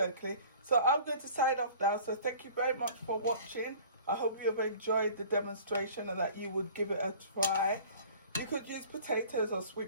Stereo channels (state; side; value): inverted; both; correlation -0.47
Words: So I'm going to sign off now. So thank you very much for watching. I hope you have enjoyed the demonstration and that you would give it a try. You could use potatoes or